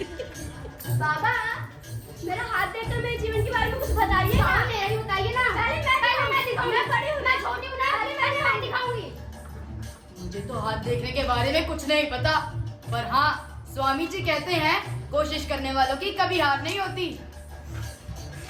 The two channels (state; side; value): identical; both; correlation 1.00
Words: बाबा, मेरा हाथ देखकर मेरे जीवन के बारे में कुछ बताइए। हाँ, मेरा ही बताइए ना। पहले मैं दिखाऊंगी। मैं बड़ी हूँ, मैं छोटी हूँ ना। पहले मैं दिखाऊंगी। मुझे तो हाथ देखने के बारे में कुछ नहीं पता, पर हाँ स्वामी जी कहते हैं कोशिश करने वालों की कभी हार नहीं होती।